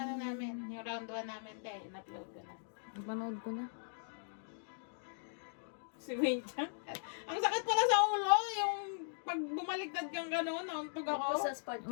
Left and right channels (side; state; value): right; silent; digital silence